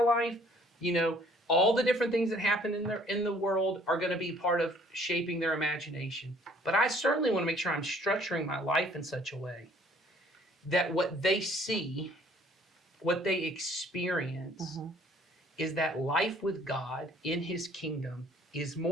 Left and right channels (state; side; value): normal; both; correlation 0.57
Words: life. You know, all the different things that happen in the world are going to be part of shaping their imagination. But I certainly want to make sure I'm structuring my life in such a way that what they see, what they experience, is that life with God in His kingdom is